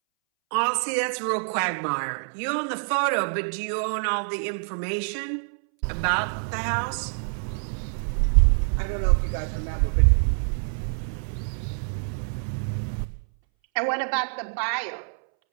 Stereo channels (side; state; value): left; silent; 61 dB below the other